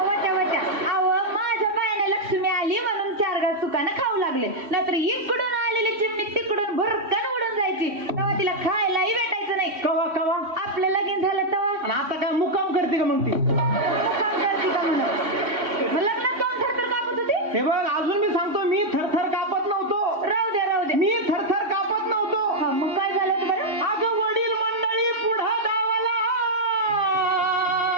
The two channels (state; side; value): late; left; 3.1 ms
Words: वट्या वट्या. अहो, माझ्या बायाने लक्ष्मी आली म्हणून 4 घास सुकानं खाऊ लागले. नाहीतर इकडून आलेली चिमणी तिकडून भरकन उडून जायची. तेव्हा तिला खायलाही भेटायचं नाही. कवा कवा आपलं लगीन झालं तेव्हा आणि आता काय मुक्काम करते का मग ती? मुक्काम करते का म्हणून? लग्नात कोण थरथर कापत होती? हे बघ अजून मी सांगतो मी थरथर कापत नव्हतो. राहू द्या राहू द्या. मी थरथर कापत नव्हतो. हा, मग काय झालं होतं बरं? अगं वडील मंडळी पुढं धावला